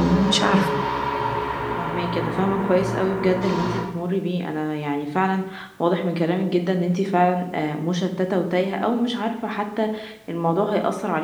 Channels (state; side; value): identical; both; correlation 1.00